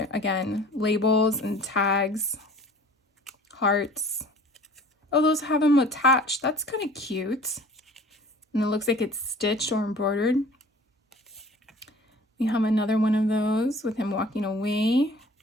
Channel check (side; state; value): both; normal; correlation 0.47